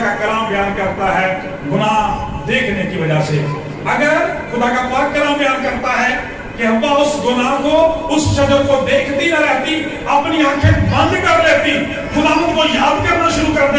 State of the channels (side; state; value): both; identical; correlation 1.00